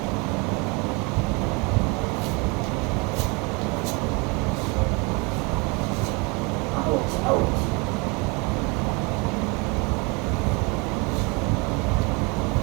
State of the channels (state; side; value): quieter; left; 28.2 dB